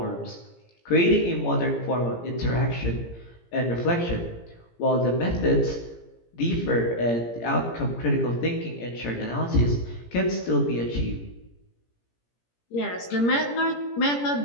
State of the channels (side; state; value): right; late; 17 ms